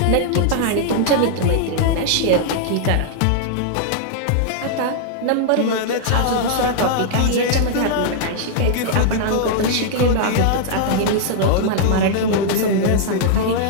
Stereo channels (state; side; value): different; both; correlation -0.01